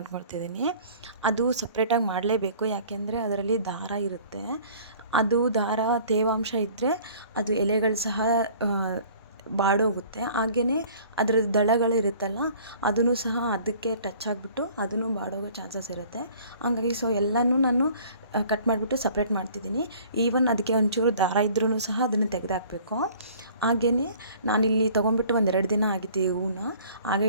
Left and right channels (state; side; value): inverted; both; correlation -0.51